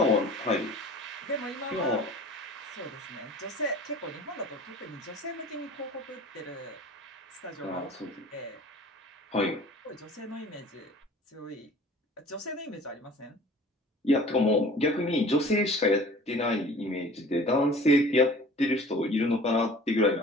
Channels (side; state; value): both; normal; correlation 0.45